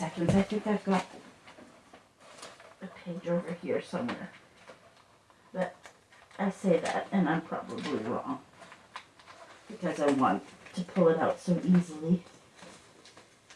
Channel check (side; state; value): both; identical; correlation 1.00